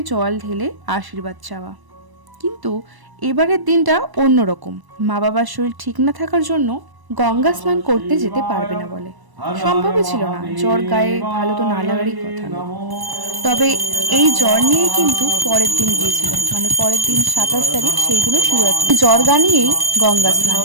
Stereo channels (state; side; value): late; left; 1.0 ms